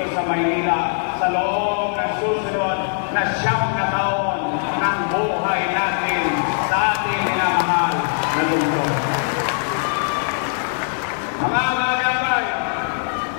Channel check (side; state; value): right; silent; digital silence